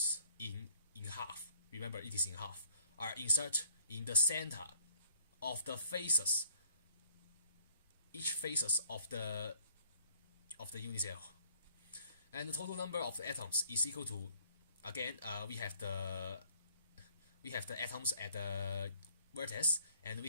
in half, remember it is in half, are inserted in the center of the faces, each faces of the unit cell, and the total number of the atoms is equal to, again, we have the atoms at the vertex, and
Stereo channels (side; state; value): both; inverted; correlation -0.62